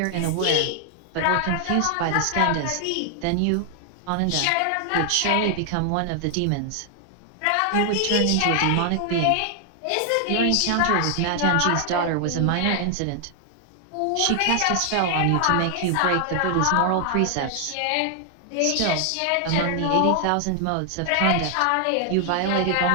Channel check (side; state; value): both; different; correlation 0.00